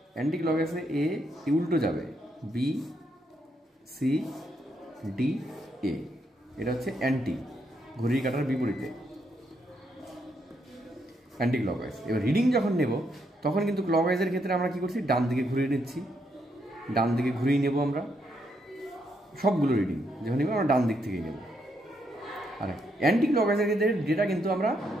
অ্যান্টি ক্লকওয়াইজে এ উল্টো যাবে, বি সি ডি এ। এটা হচ্ছে অ্যান্টি, ঘড়ির কাঁটার বিপরীতে অ্যান্টি ক্লকওয়াইজ। এবার রিডিং যখন নেব তখন কিন্তু ক্লকওয়াইজের ক্ষেত্রে আমরা কী করছি? ডান দিকে ঘুরিয়ে নিচ্ছি, ডান দিকে ঘুরিয়ে নেব আমরা সবগুলো রিডিং যখন নেব আমরা ডান দিক থেকেই নেব। আর অ্যান্টি ক্লকওয়াইজের ক্ষেত্রে ডেটা কিন্তু আমরা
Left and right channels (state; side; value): normal; both; correlation 0.77